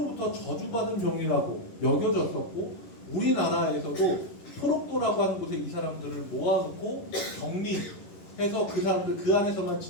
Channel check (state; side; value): late; right; 11 ms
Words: 저주받은 병이라고 여겨졌었고 우리나라에서도 소록도라고 하는 곳에 이 사람들을 모아놓고 격리해서 그 사람들 그 안에서만